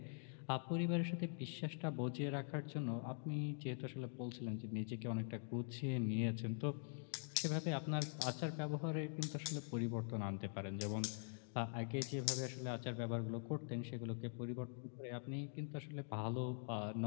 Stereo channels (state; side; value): silent; right; digital silence